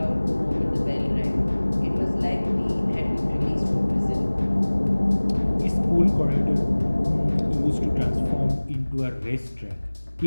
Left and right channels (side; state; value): both; inverted; correlation -1.00